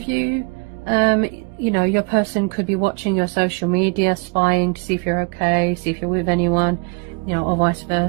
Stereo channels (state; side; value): quieter; left; 30.9 dB